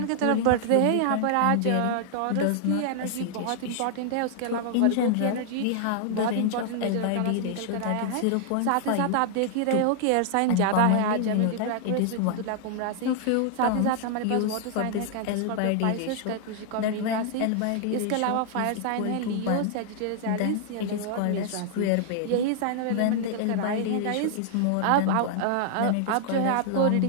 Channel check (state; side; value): different; both; correlation -0.01